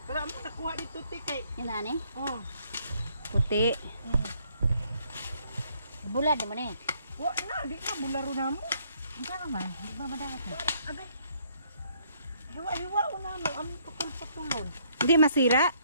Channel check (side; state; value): both; inverted; correlation -0.67